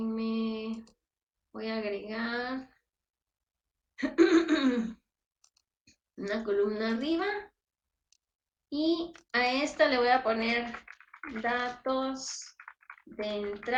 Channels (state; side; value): identical; both; correlation 1.00